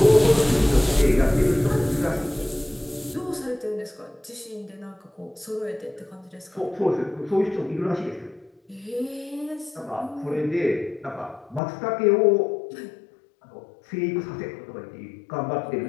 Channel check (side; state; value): right; drops out; at 11.6 s